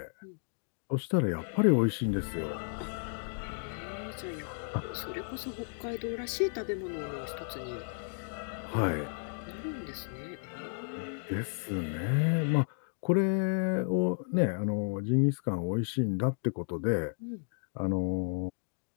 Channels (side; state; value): right; silent; digital silence